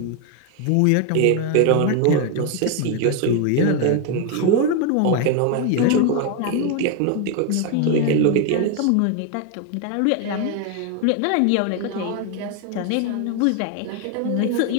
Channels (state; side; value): different; both; correlation 0.01